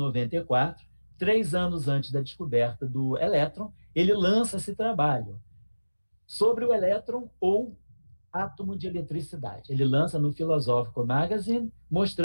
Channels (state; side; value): inverted; both; correlation -1.00